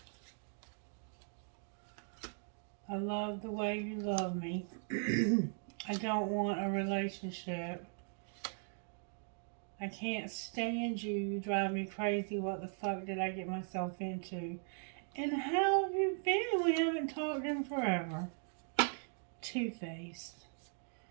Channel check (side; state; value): left; silent; 52 dB below the other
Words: I love the way you love me. I don't want a relationship. I can't stand you. You drive me crazy. What the fuck did I get myself into? And how have you been? We haven't talked in forever. Two-Faced.